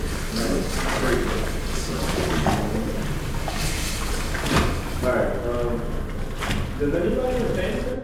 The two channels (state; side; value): identical; both; correlation 1.00